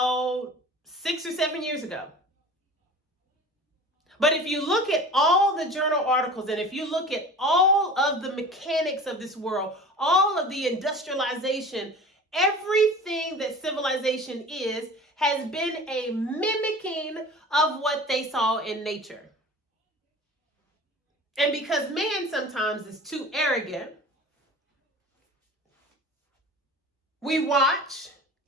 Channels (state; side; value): normal; both; correlation 0.39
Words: 6 or 7 years ago. But if you look at all the journal articles, and if you look at all of the mechanics of this world, all of the industrialization, everything that civilization has been a mimicking of what they saw in nature. And because man sometimes is too arrogant, we watch